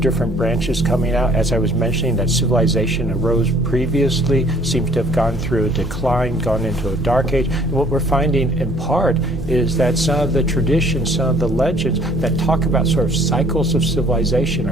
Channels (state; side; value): normal; both; correlation 0.57